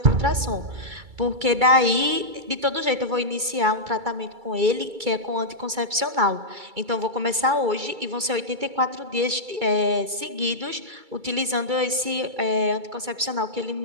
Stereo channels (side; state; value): left; late; 2.3 ms